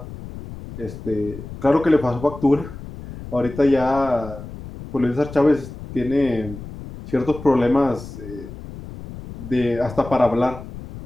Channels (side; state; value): left; noise; rumble, 13 dB below the sound